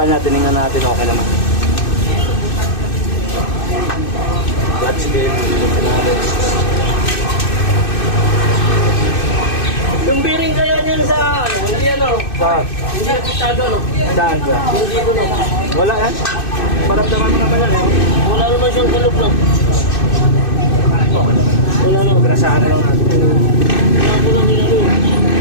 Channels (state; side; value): late; right; 2.6 ms